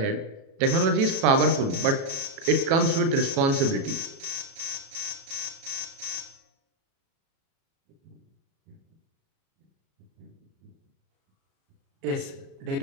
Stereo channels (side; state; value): left; late; 36 ms